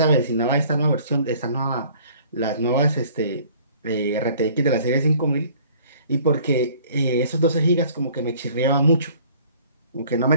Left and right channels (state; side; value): inverted; both; correlation -0.54